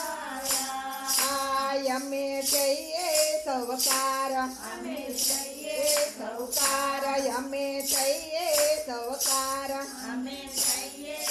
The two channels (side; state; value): both; identical; correlation 1.00